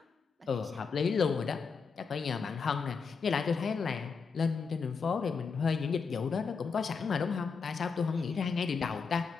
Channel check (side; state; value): right; quieter; 5.3 dB